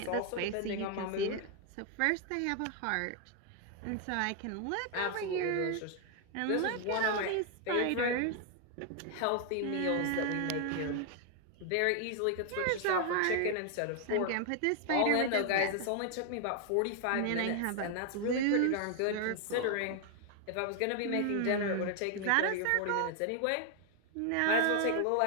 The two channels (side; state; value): both; different; correlation 0.00